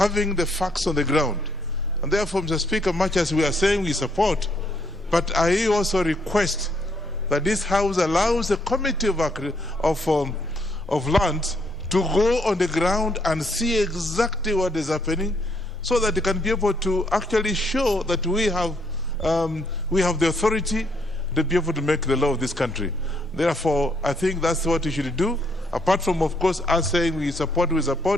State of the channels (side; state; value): both; normal; correlation 0.72